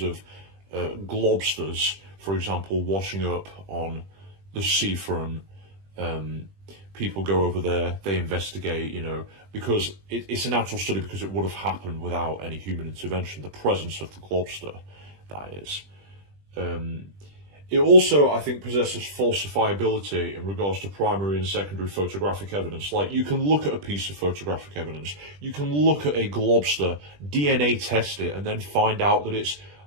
of globsters, for example, washing up on the seafront. People go over there, they investigate, because it's a natural study because it would have happened without any human intervention, the presence of the globster, that is. It also, I think, possesses falsifiability in regards to primary and secondary photographic evidence. Like, you can look at a piece of photographic evidence, you can look at a globster, DNA test it, and then find out that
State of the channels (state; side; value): late; left; 20 ms